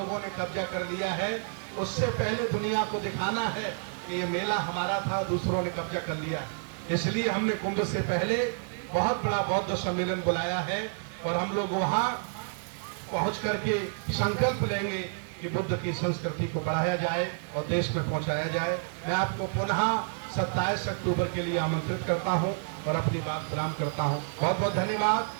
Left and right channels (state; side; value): silent; left; digital silence